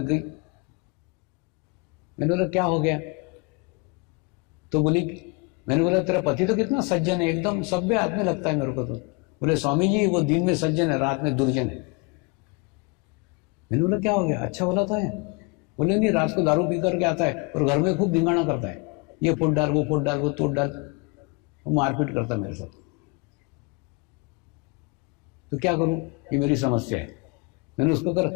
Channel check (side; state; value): right; quieter; 29.4 dB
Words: गई। मैंने बोला क्या हो गया? तो बोली, मैंने बोला तेरा पति तो कितना सज्जन है, एकदम सभ्य आदमी लगता है मेरे को। तो बोले स्वामी जी वो दिन में सज्जन है, रात में दुर्जन है। मैंने बोला क्या हो गया? अच्छा बोला था है? बोले नहीं, रात को दारू पी करके आता है और घर में खूब धिंगाना करता है, ये फुट डाल, वो फुट डाल, वो तोड़ डाल, वो मारपीट करता मेरे साथ। तो क्या करूं? ये मेरी समस्या है। मैंने उसको